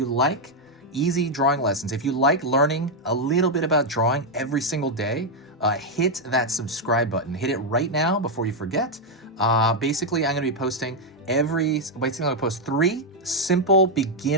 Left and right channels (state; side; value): normal; both; correlation 0.01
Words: like easy drawing lessons, if you like learning a little bit about drawing every single day, hit that subscribe button. Hit it right now before you forget. Basically, I'm going to be posting I'm going to post 3 simple